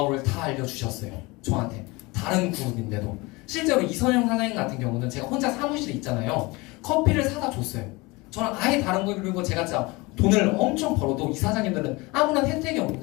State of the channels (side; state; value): right; quieter; 24.0 dB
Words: 다 알려주셨어요. 저한테. 다른 그룹인데도. 실제로 이선영 사장님 같은 경우는 제가 혼자 사무실에 있잖아요. 커피를 사다 줬어요. 저랑 아예 다른 거. 그리고 제가 진짜 돈을 엄청 벌어도 이 사장님들은 아무런 혜택이